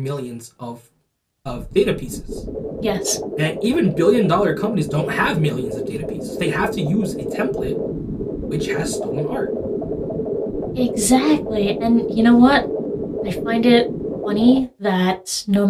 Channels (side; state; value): both; identical; correlation 1.00